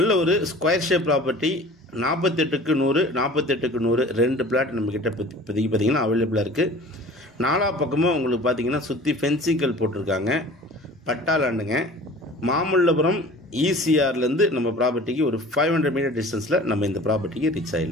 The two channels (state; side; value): normal; both; correlation 0.43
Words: ஒரு ஸ்கொயர் ஷேப் ப்ராப்பர்ட்டி. 48க்கு 100, 48க்கு 100 2 பிளாட் நம்மக்கிட்ட இப்போதைக்கு பார்த்தீங்கன்னா அவைலபிளாக இருக்குது. 4 பக்கமும் உங்களுக்கு பார்த்தீங்கன்னா சுற்றி ஃபென்சிங்கல் போட்டிருக்காங்க. பட்டாளாண்டுங்க. மாமல்லபுரம் ECRலேருந்து நம்ம ப்ராப்பர்ட்டிக்கு ஒரு 500 மீட்டர் டிஸ்டன்ஸில் நம்ம இந்த ப்ராப்பர்ட்டிக்கு ரீச்